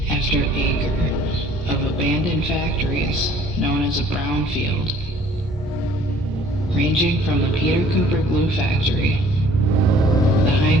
after acre of abandoned factories known as a brownfield, ranging from the Peter Cooper glue factory, the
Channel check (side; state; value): both; normal; correlation 0.55